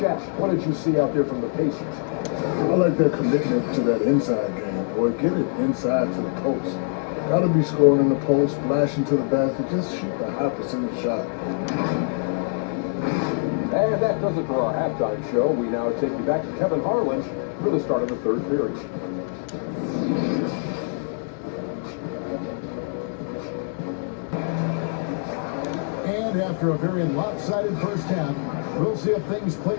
what did you see out there from the Pacers? I like their commitment to that inside game, boy. Get it inside to the post. Gotta be scoring in the post, flashing to the basket, just shoot a high percentage shot. And that does it for our halftime show. We now take you back to Kevin Harlan for the start of the third period. And after a very lopsided first half, we'll see if things play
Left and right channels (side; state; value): right; silent; 62 dB below the other